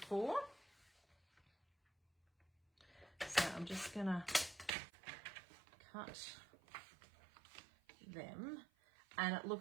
for. So I'm just gonna cut them, and it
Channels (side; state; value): left; drops out; at 4.7 s